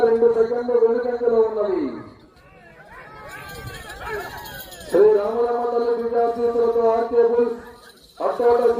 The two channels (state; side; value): identical; both; correlation 1.00